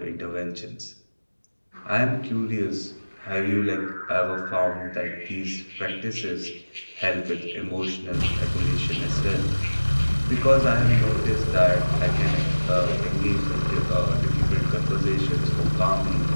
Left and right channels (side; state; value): both; inverted; correlation -1.00